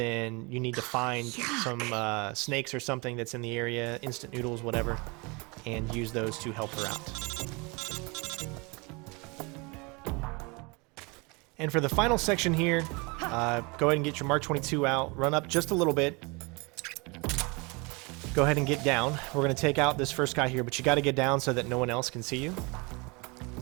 you need to find some snakes or something that's in the area, instant noodles, whatever, and use those to help her out. And for the final section here, go ahead and get your Mark 22 out, run up just a little bit, go ahead and get down. We're going to take out this first guy here, but you got to get down so that no one else can see you.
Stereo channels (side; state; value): left; quieter; 28.1 dB